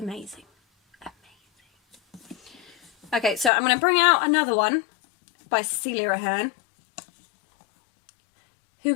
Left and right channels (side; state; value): right; drops out; at 3.5 s